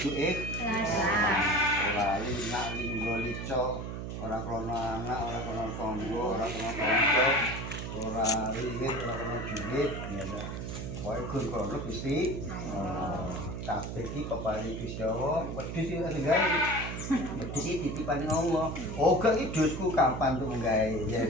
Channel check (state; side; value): noise; right; hum, 6 dB below the sound